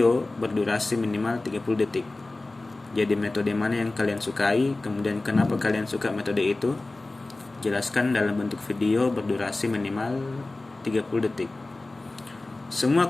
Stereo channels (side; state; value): right; quieter; 3.0 dB